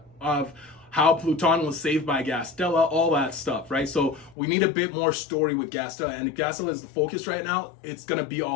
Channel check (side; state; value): right; drops out; at 4.4 s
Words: of how Pluton was saved by Gastella, all that stuff, right? So we need a bit more story with Gastella, and if Gastella is the focus right now, it's gonna be